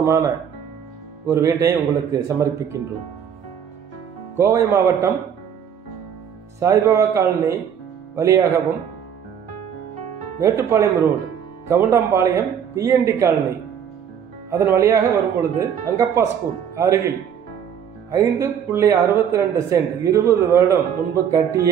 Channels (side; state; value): left; quieter; 8.3 dB